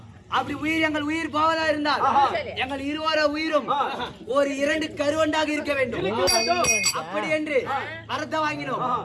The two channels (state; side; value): identical; both; correlation 1.00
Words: அப்படி உயிர் எங்கள் உயிர் போவதா இருந்தால் எங்கள் இருவர உயிரும் ஒரு 2 கருவண்டாக இருக்க வேண்டும் அப்படி என்று அர்த்தம் வாங்கினோம்